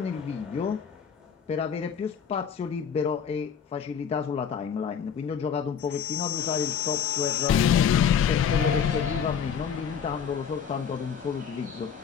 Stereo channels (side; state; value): right; quieter; 7.5 dB